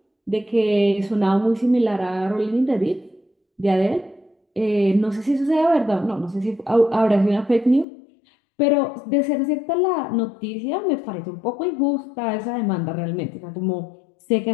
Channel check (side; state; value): right; drops out; at 7.9 s